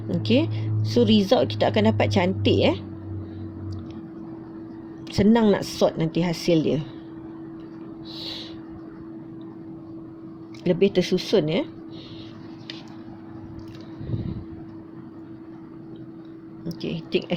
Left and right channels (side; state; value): both; identical; correlation 1.00